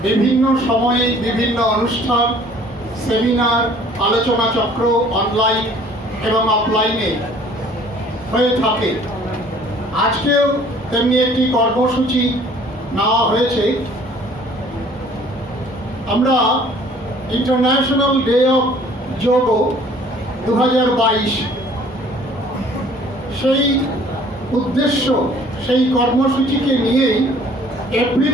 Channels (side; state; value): both; normal; correlation 0.54